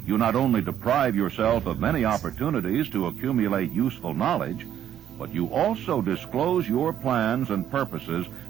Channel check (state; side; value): quieter; left; 10.3 dB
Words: you not only deprive yourself of many opportunities to accumulate useful knowledge, but you also disclose your plans and purposes